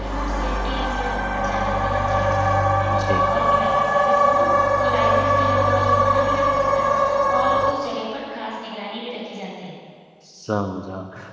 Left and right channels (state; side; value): identical; both; correlation 1.00